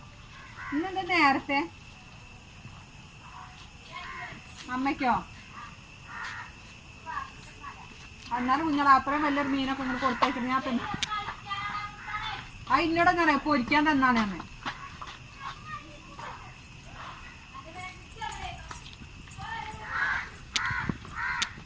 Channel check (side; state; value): both; identical; correlation 1.00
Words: ഇന്നെന്താ നേരത്തെ? അമ്മയ്ക്കോ? എന്നാലും കുഞ്ഞാൽ അത്രയും വലിയൊരു മീനൊക്കെ ഇങ്ങനെ കൊടുത്തേക്കുന്നത് ഞാൻ തന്നെ. ആ ഇന്നോട് ഞാൻ പൊരിക്കാൻ തന്നാണ് അമ്മ.